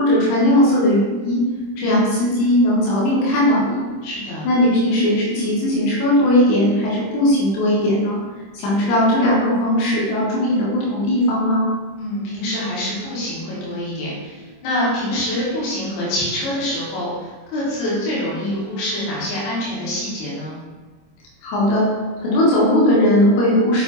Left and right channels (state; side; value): late; right; 25 ms